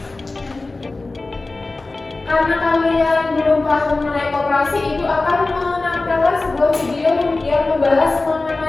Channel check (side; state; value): right; quieter; 3.3 dB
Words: Karena kalian belum paham mengenai koperasi, Ibu akan menampilkan sebuah video yang membahas